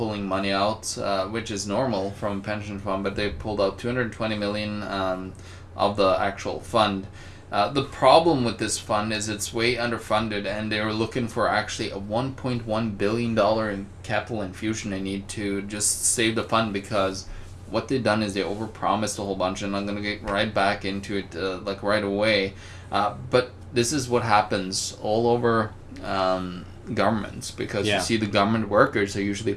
money out, which is normal from a pension fund, but they pulled out 220 million of the actual fund. The problem with this fund is it's way underfunded, and they were looking for actually a $1.1 billion in capital infusion they need to just save the fund, because what they've done is they overpromised a whole bunch, and I'm going to get right back into it like right away. But this is what happens all over governments, because you see the government workers are usually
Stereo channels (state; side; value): identical; both; correlation 1.00